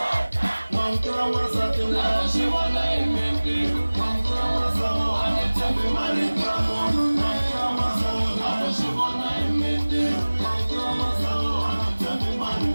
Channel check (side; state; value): both; inverted; correlation -1.00